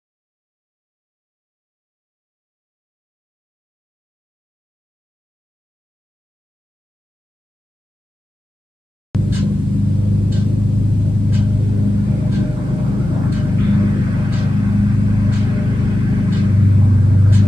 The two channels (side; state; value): both; normal; correlation 0.93